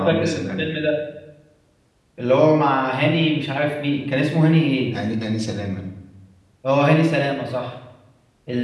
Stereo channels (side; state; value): both; identical; correlation 1.00